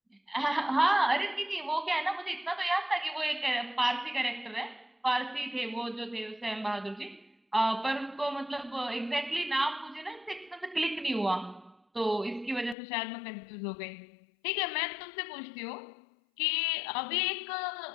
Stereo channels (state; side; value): drops out; right; at 12.8 s